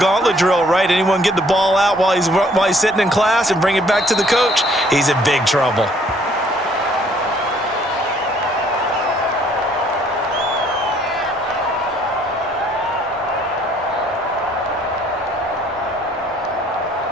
drill, right? Anyone get the ball out while he's sitting in class and bring it back to the coach? He's in big trouble.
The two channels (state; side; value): normal; both; correlation 0.62